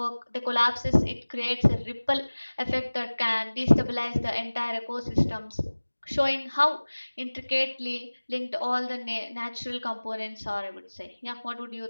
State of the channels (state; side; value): inverted; both; correlation -1.00